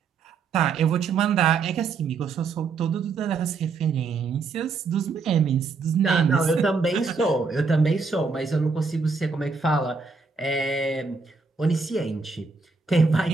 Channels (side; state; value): left; quieter; 4.7 dB